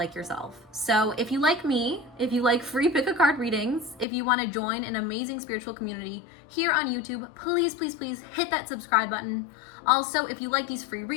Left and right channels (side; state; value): right; drops out; at 4.0 s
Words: yourself. So if you like me, if you like free pick a card readings, if you want to join an amazing spiritual community here on YouTube, please hit that subscribe button. Also, if you like these free